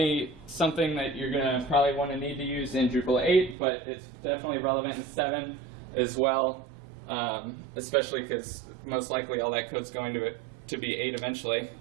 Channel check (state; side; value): drops out; left; at 3.6 s